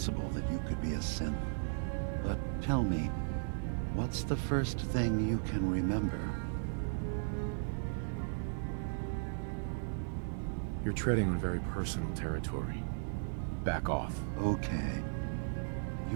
that you could be a synth, but tell me, what's the first thing you can remember? You're treading on very personal territory. Back off. Okay.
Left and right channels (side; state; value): left; silent; digital silence